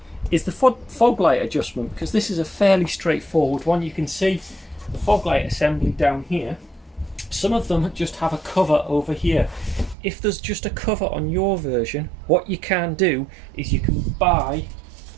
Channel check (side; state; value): left; drops out; at 10.0 s